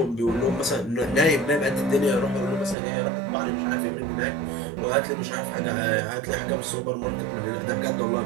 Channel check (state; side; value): drops out; left; at 2.8 s